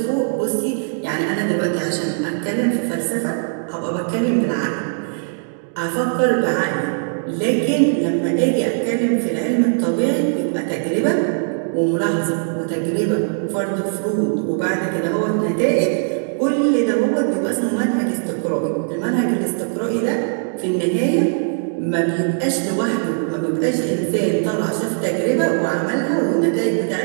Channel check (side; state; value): left; silent; digital silence